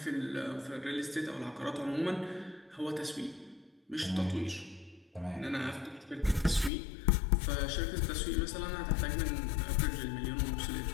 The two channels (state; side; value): drops out; right; at 6.7 s